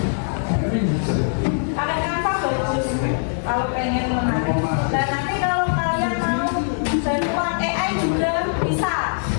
Pakai Canva bagus kalau pengen menarik. Dan nanti kalau kalian mau bantuan AI juga bisa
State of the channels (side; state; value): right; silent; 55 dB below the other